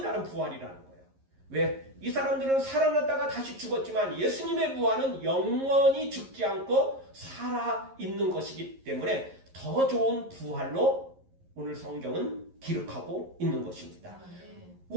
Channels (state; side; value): late; left; 11 ms